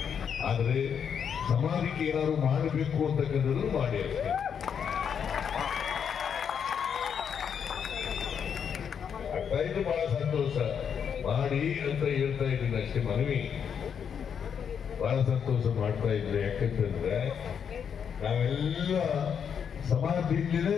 ಆದ್ರೆ ಸಮಾಜಕ್ಕೆ ಏನಾದ್ರು ಮಾಡಬೇಕು ಅಂತಕ್ಕಂಥದ್ದು ಮಾಡಿ ಅಷ್ಟೇ. ಇದು ಬಹಳ ಸಂತೋಷ. ಮಾಡಿ ಅಂತ ಹೇಳ್ತಾ ಇದ್ದೀನಿ ಅಷ್ಟೇ, ಮನವಿ. ಬಹಳ ಸಂತೋಷ ಮಾಡ್ತಾ ಇದ್ರೆ. ಯಾಕಂತಂದ್ರೆ ನಾವೆಲ್ಲ ಸಮಾಜದಿಂದಲೇ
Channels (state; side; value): quieter; right; 7.5 dB